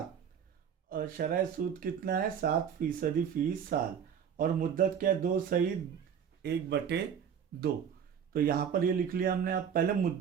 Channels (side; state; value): left; quieter; 7.9 dB